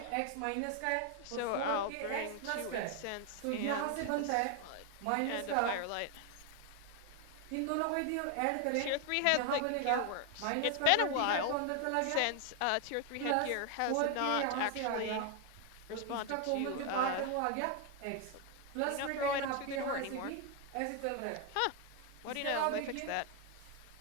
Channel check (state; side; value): different; both; correlation 0.01